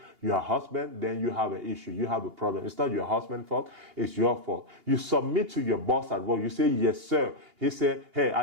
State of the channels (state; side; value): late; left; 2.8 ms